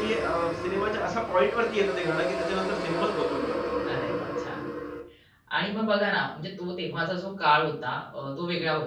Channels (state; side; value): identical; both; correlation 1.00